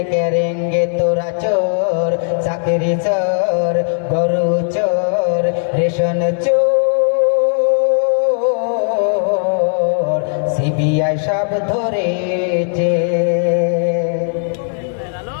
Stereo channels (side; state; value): right; silent; 64 dB below the other